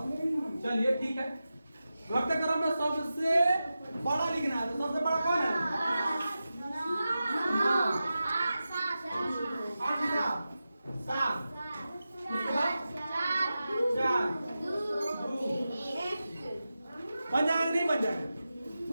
चलिए ठीक है। घटते क्रम में सबसे बड़ा लिखना है, तो सबसे बड़ा कौन है?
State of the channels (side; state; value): both; inverted; correlation -0.93